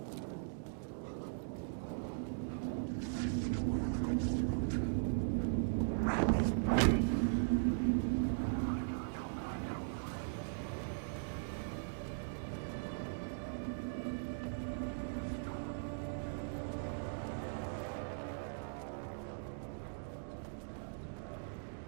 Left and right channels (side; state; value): left; silent; digital silence